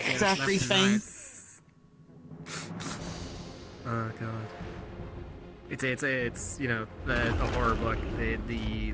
It's left and everything. right. Oh god. It's you know a horror book.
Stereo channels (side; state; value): both; identical; correlation 1.00